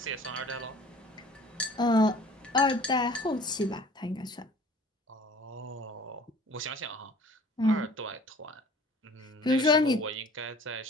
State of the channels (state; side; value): normal; both; correlation 0.48